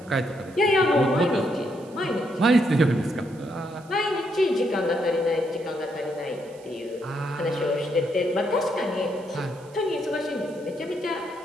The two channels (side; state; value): right; noise; hiss, 26 dB below the sound